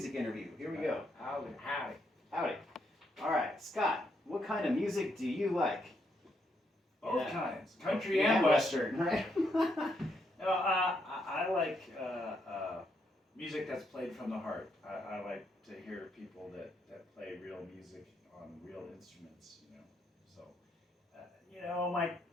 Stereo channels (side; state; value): both; normal; correlation 0.77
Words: interview. Here we go. Howdy. Howdy. All right, Scott, what kind of music do you like? Both kinds, country and western. Right? I like music that's played from the heart. I like to hear people that play real music on real instruments, you know. So,